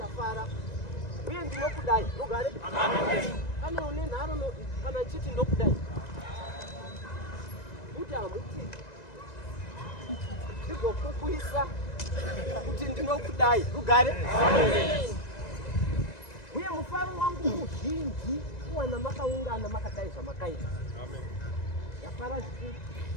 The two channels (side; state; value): right; late; 1.9 ms